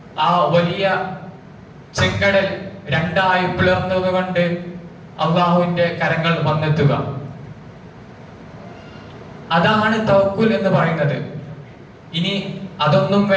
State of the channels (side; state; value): both; identical; correlation 1.00